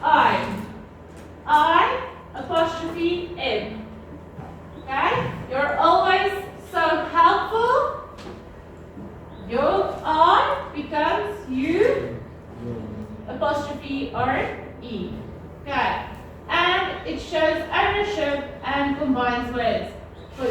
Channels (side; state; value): both; identical; correlation 1.00